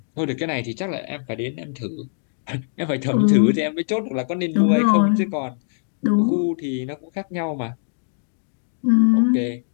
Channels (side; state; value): right; silent; digital silence